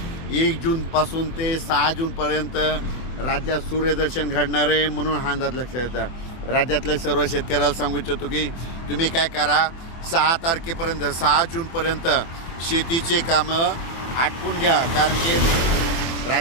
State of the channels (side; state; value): right; late; 24 ms